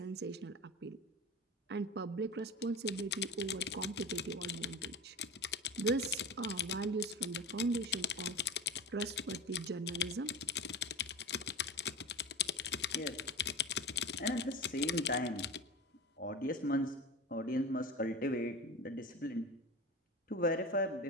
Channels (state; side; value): normal; both; correlation 0.28